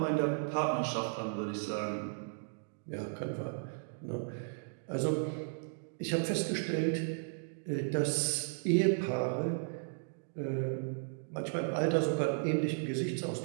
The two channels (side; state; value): left; silent; digital silence